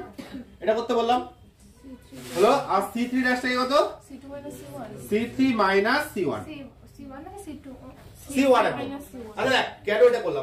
এটা করতে বললাম। হলো? আর c3 ড্যাশটাকে কত c3 মাইনাস c1 c1 আচ্ছা দেখ কেন এটা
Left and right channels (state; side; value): identical; both; correlation 1.00